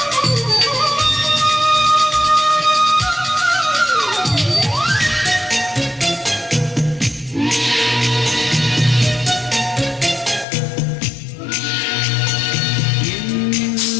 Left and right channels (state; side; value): drops out; right; at 10.5 s